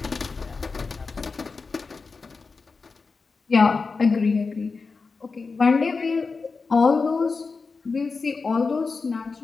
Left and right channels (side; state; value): right; quieter; 4.5 dB